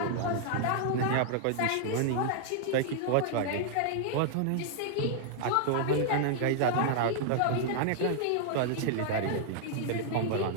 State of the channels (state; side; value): different; both; correlation -0.01